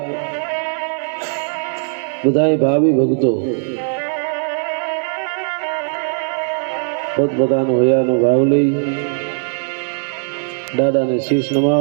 બધા ભાવિ ભક્તો પોતપોતાનો હૈયાનો ભાવ લઈ દાદાને શીશ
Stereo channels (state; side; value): silent; left; digital silence